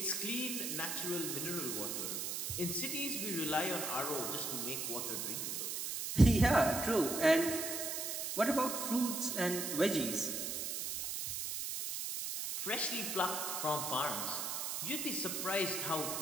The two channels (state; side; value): noise; right; hiss, 3 dB below the sound